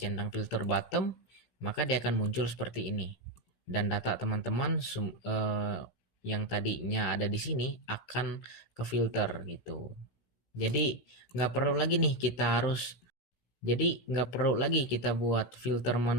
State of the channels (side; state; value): right; late; 16 ms